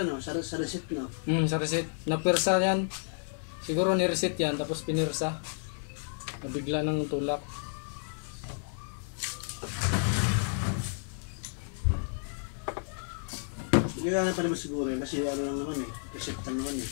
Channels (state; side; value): silent; right; digital silence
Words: no, sa receipt no. Sa receipt. Napirsa yan. Siguro ni-receipt yan tapos pinirsa. Nabigla ng tulak. Gagana pa naman siguro yun kasi ano lang naman eh. Receipt lang naman eh.